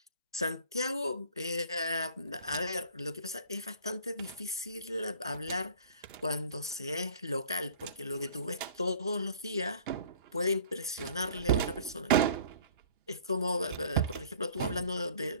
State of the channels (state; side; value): inverted; both; correlation -0.50